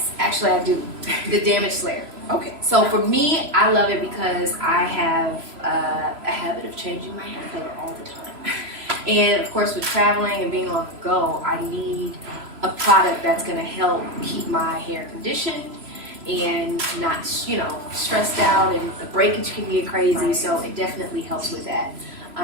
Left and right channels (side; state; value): left; late; 3.0 ms